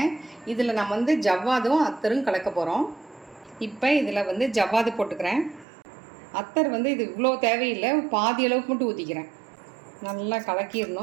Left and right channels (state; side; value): drops out; left; at 5.7 s